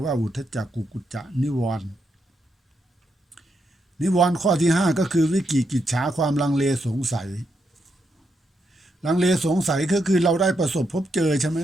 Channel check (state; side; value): normal; both; correlation 0.81